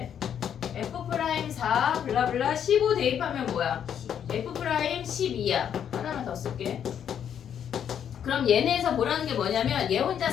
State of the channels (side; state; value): right; quieter; 8.9 dB